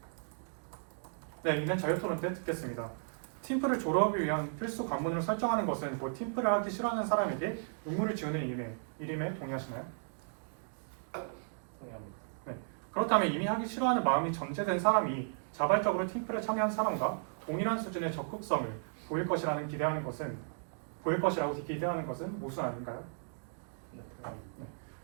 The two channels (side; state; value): left; silent; digital silence